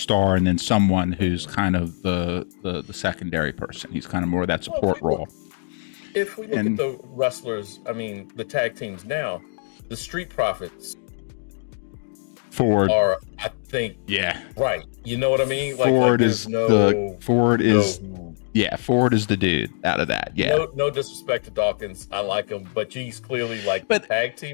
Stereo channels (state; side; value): silent; right; digital silence